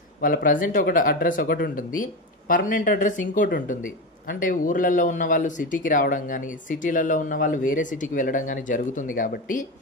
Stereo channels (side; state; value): both; normal; correlation 0.18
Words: వాళ్ళ ప్రజెంట్ అడ్రస్ ఒకటి ఉంటుంది, పర్మనెంట్ అడ్రస్ ఇంకోటి ఉంటుంది. అంటే ఊర్లలో ఉన్న వాళ్ళు సిటీకి రావడం కానీ, సిటీలలో ఉన్న వాళ్ళు వేరే సిటీకి వెళ్ళడం కానీ జరుగుతుంది. కాబట్టి